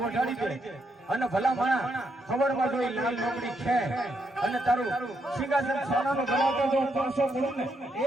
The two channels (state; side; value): normal; both; correlation 0.78